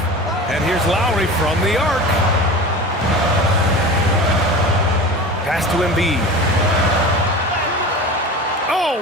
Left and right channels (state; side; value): normal; both; correlation 0.33